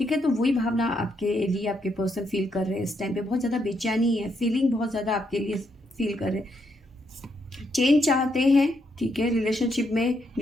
है। तो वही भावना आपके लिए आपके पर्सन फील कर रहे हैं इस टाइम पे। बहुत ज़्यादा बेचैनी है, फीलिंग बहुत ज़्यादा आपके लिए फील कर रहे हैं। चेंज चाहते हैं, ठीक है। रिलेशनशिप में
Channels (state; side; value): normal; both; correlation 0.77